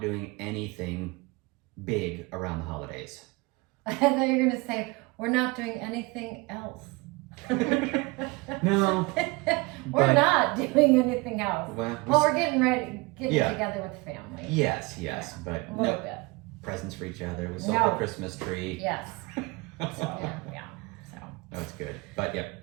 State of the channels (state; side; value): quieter; left; 25.4 dB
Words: anything big around the holidays. And then you're going to say, we're not doing anything else. No. We're but- not doing anything else. Well, We're getting Yeah. together with family. yes, but A little no bit. presents for each other. We sold No. the Christmas tree. Yes. So, Yeah. yeah. So, That's good. But yep.